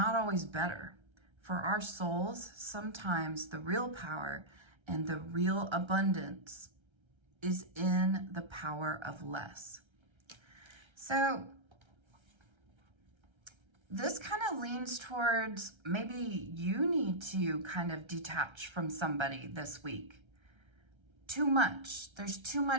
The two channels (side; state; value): left; late; 1.3 ms